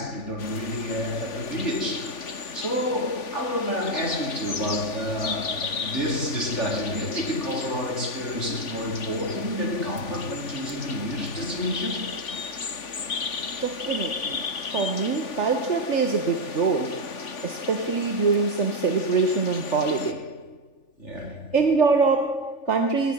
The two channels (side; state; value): right; late; 3.5 ms